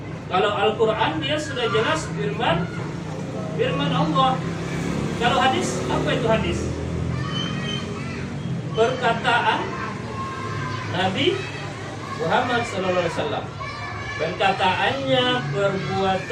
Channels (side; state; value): both; identical; correlation 1.00